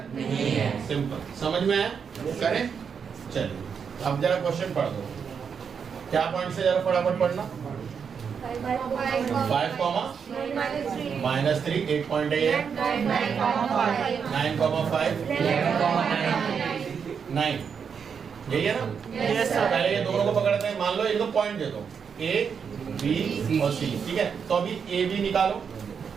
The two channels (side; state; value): left; quieter; 6.6 dB